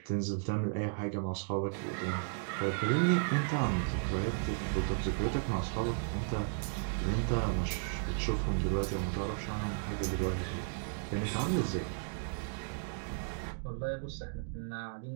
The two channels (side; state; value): left; silent; digital silence